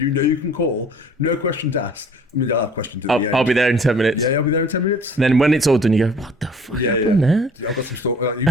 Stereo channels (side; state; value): both; normal; correlation 0.51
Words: know you can call, no questions asked. I mean, they'll have questions at the end. I'll be there in 10 minutes. Yeah, I'll be there in 10 minutes. And then when it's all done, you go, what the fuck Yeah, happened there? I've got some you've